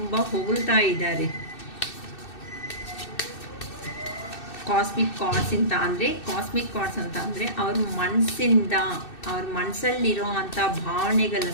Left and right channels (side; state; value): right; late; 2.6 ms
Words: ಹೊಗಳ್ತಾ ಇದ್ದಾರೆ. ಕಾಸ್ಮಿಕ್ ಕಾರ್ಡ್ಸ್ ಅಂತ ಅಂದರೆ ಅವ್ರ ಮನಸ್ಸಿಂದ, ಅವ್ರ ಮನಸ್ಸಲ್ಲಿರೋ ಅಂಥ